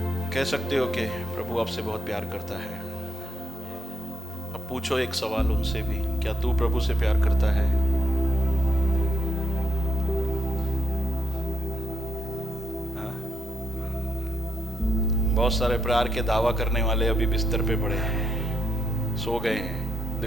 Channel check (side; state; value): both; normal; correlation 0.80